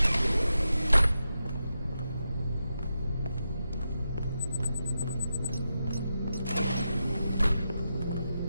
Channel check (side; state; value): both; inverted; correlation -0.88